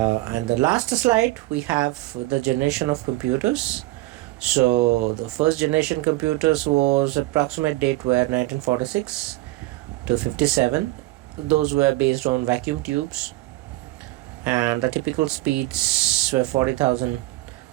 last slide, we have the generation of computers. So the first generation computers was approximate date were 1946 to 57. Those were based on vacuum tubes, and the typical speeds were 40,000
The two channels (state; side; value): quieter; left; 18.9 dB